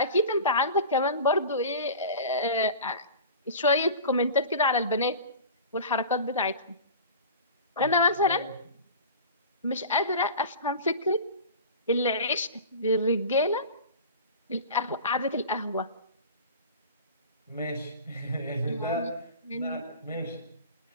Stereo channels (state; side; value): inverted; both; correlation -0.36